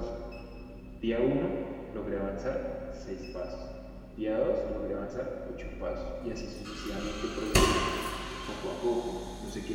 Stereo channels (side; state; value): both; identical; correlation 1.00